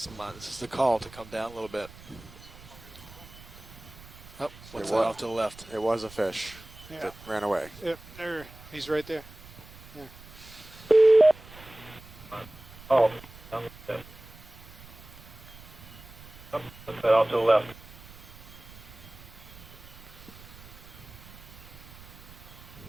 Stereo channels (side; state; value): right; noise; rumble, 19 dB below the sound